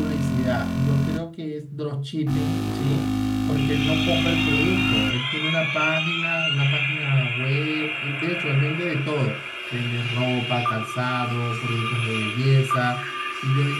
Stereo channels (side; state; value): both; identical; correlation 1.00